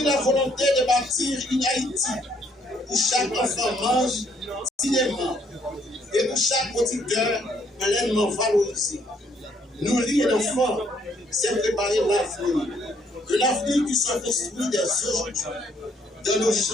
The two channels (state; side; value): normal; both; correlation 0.68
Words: la volonté de bâtir une Haïti où chaque enfant mange dignement et où chaque producteur pleinement valorisé. Nourrir un enfant, c'est préparer l'avenir. Un avenir qui se construit dès aujourd'hui, dans nos